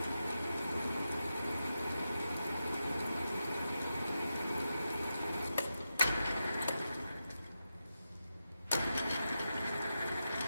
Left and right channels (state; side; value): inverted; both; correlation -0.89